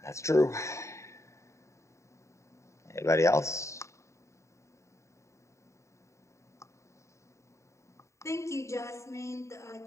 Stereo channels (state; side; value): late; right; 0.14 ms